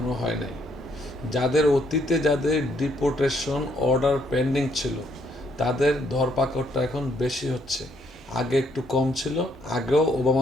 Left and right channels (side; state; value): both; normal; correlation 0.70